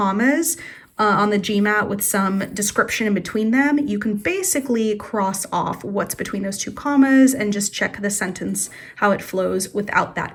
on the GMAT with some description in between them, you can basically cross off what's between those two commas and just check the sentence, how it flows without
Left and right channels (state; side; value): identical; both; correlation 1.00